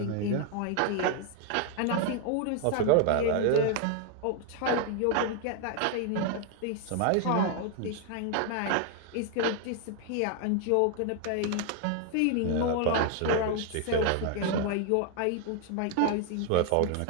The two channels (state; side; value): different; both; correlation 0.00